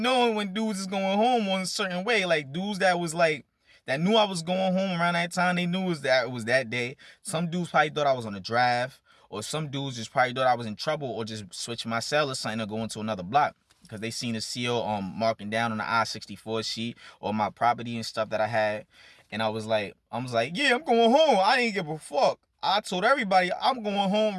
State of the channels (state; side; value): identical; both; correlation 1.00